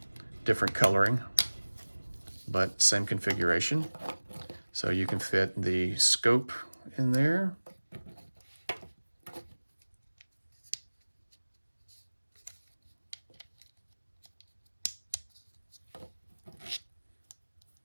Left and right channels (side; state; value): both; inverted; correlation -1.00